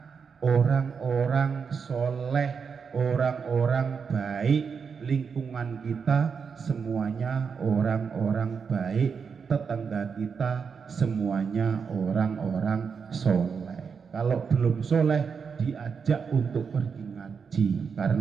orang-orang soleh, orang-orang baik. Lingkungan kita semuanya orang-orang baik, tetangga kita semuanya orang-orang soleh. Kalau belum soleh diajak untuk pergi ngaji,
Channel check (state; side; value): quieter; left; 6.0 dB